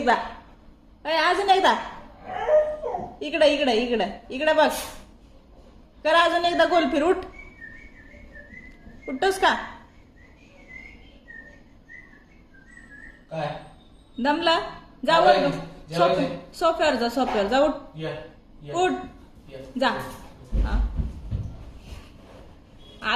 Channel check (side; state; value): both; identical; correlation 1.00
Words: अजून एकदा. इकडे इकडे इकडे इकडे बघ. करा अजून एकदा गोल फिर. उठ उठतोस का? काय दमला? जा वर सोफ्यावर जा. सोफ्यावर जा. उठ उठ जा. हा